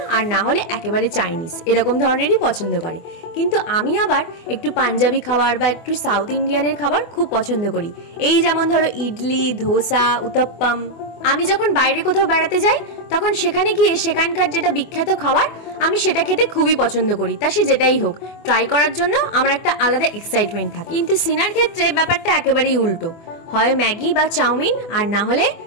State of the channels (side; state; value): right; late; 24 ms